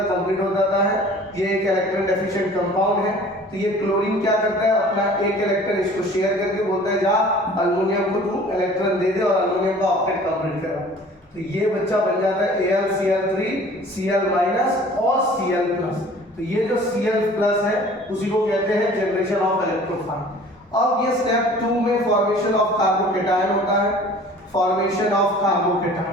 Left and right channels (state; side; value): normal; both; correlation 0.48